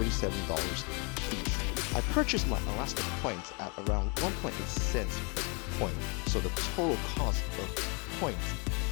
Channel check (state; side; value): quieter; right; 33.0 dB